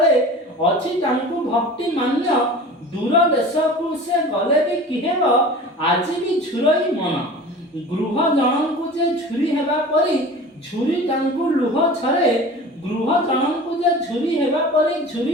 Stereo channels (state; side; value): normal; both; correlation 0.38